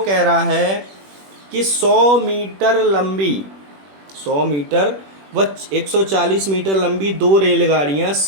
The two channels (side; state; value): left; late; 21 ms